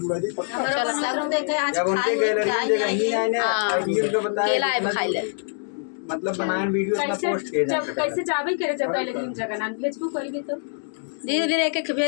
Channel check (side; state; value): right; silent; digital silence